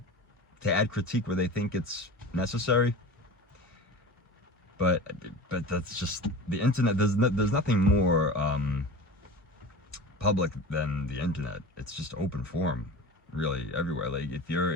to add critique where they think it's necessary. But that's just the internet. There's nothing more public than the internet. It's just open forum, really, everywhere. Like if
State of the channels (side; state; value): both; normal; correlation 0.34